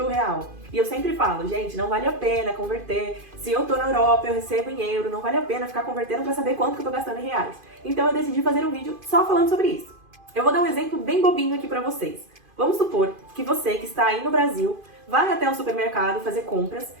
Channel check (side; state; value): left; late; 2.5 ms